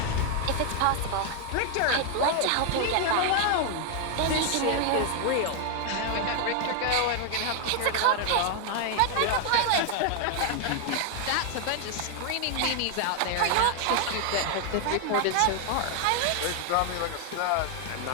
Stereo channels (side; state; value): both; different; correlation 0.00